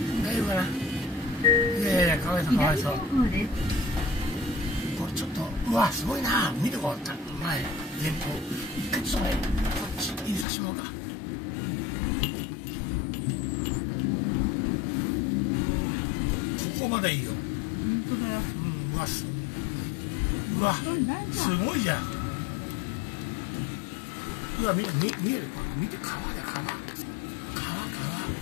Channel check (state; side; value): drops out; right; at 10.5 s